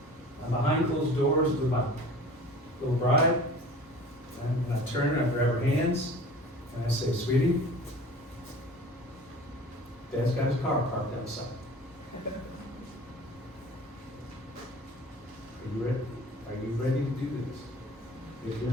And behind closed doors with my little bride. And I turn her, I grab her hands, and I say, sweetie, Dad's got his car parked outside. Are you ready? Are you ready to do this? If you're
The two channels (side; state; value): both; normal; correlation 0.43